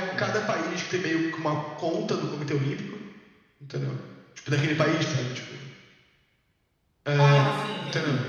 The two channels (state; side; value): identical; both; correlation 1.00